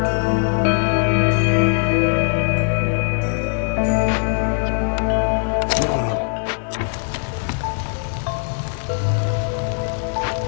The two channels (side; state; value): right; silent; 65 dB below the other